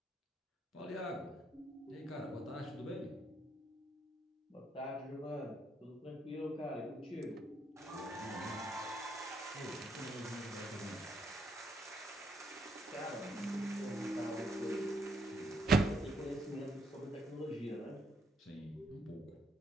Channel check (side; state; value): both; normal; correlation 0.74